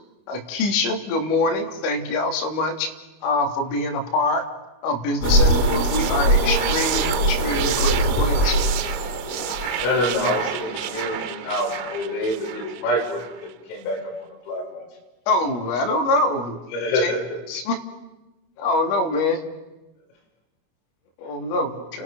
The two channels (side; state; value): right; late; 24 ms